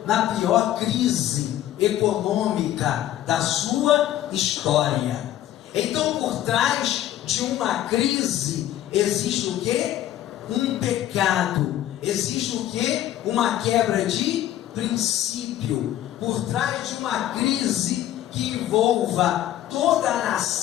na pior crise econômica da sua história. Então, por trás de uma crise existe o quê? Um pecado. Existe o quê? Uma quebra de princípio. Por trás de uma crise que envolva toda a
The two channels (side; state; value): right; quieter; 12.6 dB